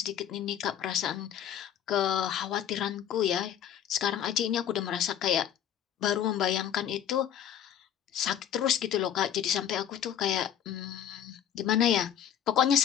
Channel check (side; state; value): right; quieter; 9.7 dB